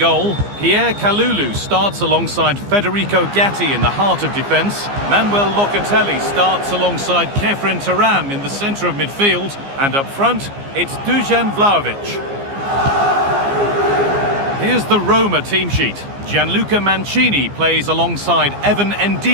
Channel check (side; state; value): left; late; 15 ms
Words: Pierre Kalulu starts alongside Federico Gatti in the heart of defence. Manuel Locatelli starts alongside Kefren Turam in the centre of midfield. And up front, it's Dusan Vlahovic. Here's the Roma team sheet. Gianluca Mancini plays alongside Evan